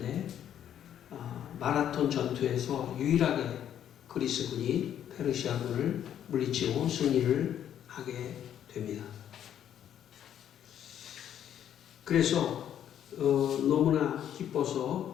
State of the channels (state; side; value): quieter; right; 10.1 dB